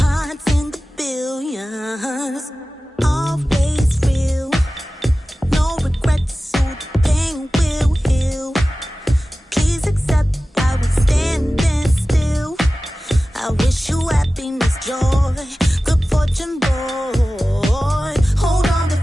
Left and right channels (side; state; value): both; normal; correlation 0.96